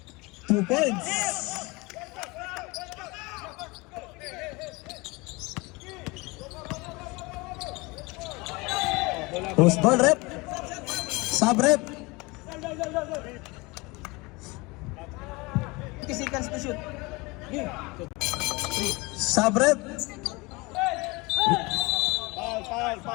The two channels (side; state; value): right; quieter; 24.8 dB